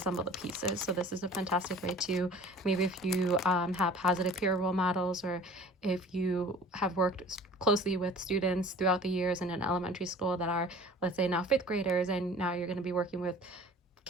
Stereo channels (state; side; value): normal; both; correlation 0.45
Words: the pieces. So this is a fantastic way to, maybe if you have positive peer role models, or if you have worked closely with students throughout the years in an elementary school that are, let's say, now 5th graders, and now you're going to be working with